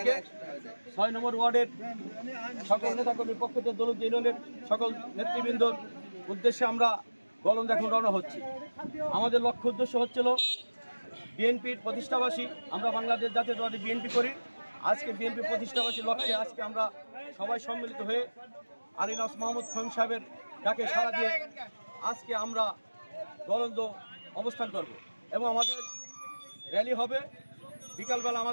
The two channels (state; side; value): inverted; both; correlation -1.00